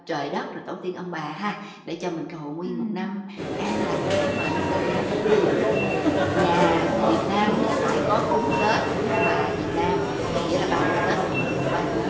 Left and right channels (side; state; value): both; identical; correlation 1.00